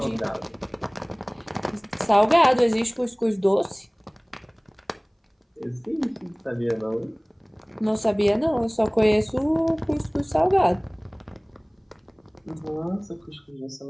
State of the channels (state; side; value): identical; both; correlation 1.00